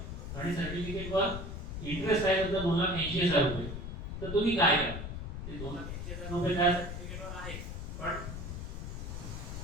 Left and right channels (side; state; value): left; noise; rumble, 6 dB below the sound